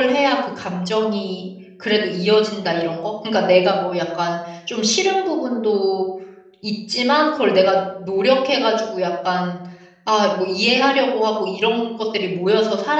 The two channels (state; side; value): identical; both; correlation 1.00